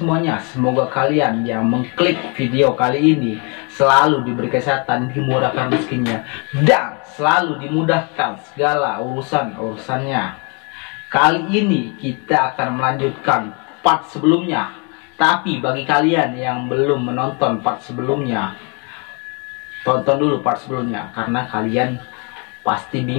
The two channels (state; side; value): quieter; right; 34.0 dB